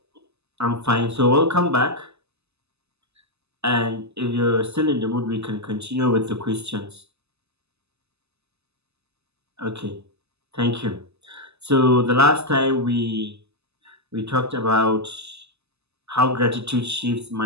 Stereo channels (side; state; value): left; late; 0.79 ms